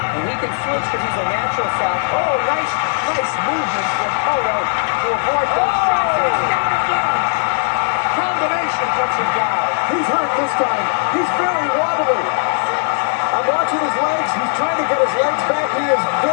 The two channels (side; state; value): right; silent; digital silence